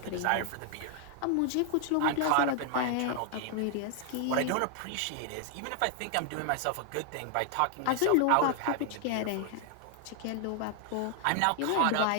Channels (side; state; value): both; different; correlation 0.00